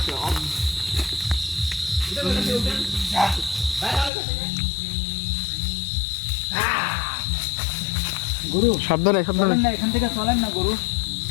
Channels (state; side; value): drops out; right; at 4.1 s